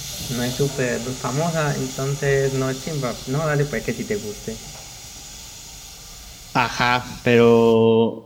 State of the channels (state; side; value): identical; both; correlation 1.00